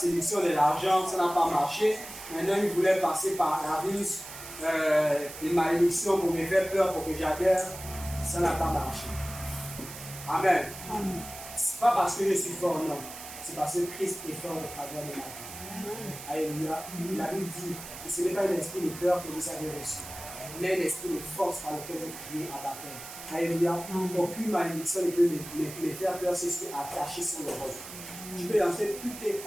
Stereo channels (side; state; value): right; noise; hiss, 12 dB below the sound